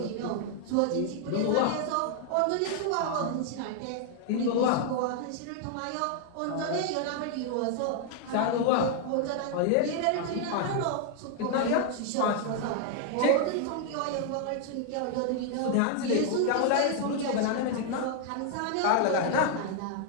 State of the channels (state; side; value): different; both; correlation 0.00